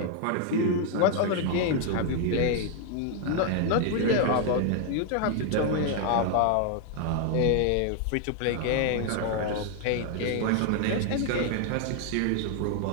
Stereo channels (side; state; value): both; different; correlation 0.00